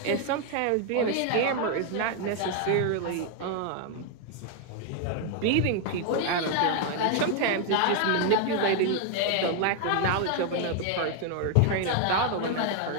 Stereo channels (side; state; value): both; different; correlation 0.00